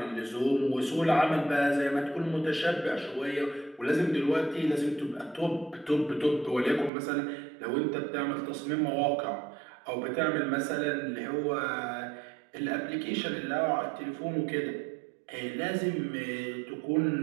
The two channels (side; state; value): left; drops out; at 6.9 s